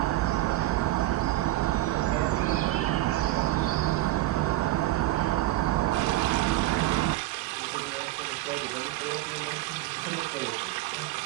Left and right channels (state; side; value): quieter; left; 16.7 dB